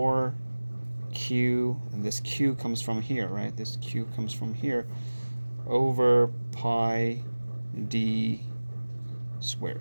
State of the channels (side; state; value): both; inverted; correlation -1.00